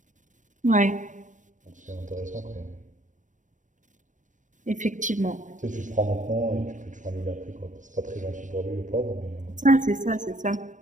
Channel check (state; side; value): late; left; 0.37 ms